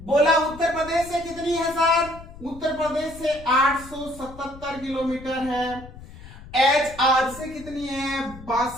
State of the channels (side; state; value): left; noise; rumble, 17 dB below the sound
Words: उत्तर प्रदेश से कितनी है सर, उत्तर प्रदेश से 877 किलोमीटर है। HR से कितनी है,